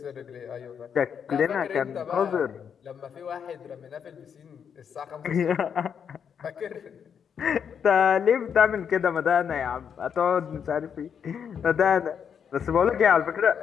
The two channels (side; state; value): right; quieter; 7.5 dB